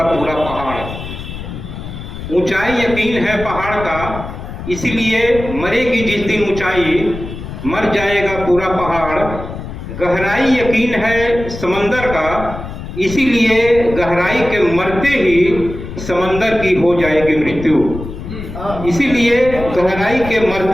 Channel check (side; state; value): left; noise; rumble, 10 dB below the sound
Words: पूरा पहाड़। ऊंचाई यकीन है पहाड़ का, इसीलिए मरेगी जिस दिन ऊंचाई, मर जाएगा पूरा पहाड़। गहराई यकीन है समंदर का, इसीलिए गहराई के मरते ही समंदर की हो जाएगी मृत्यु। इसीलिए गहराई के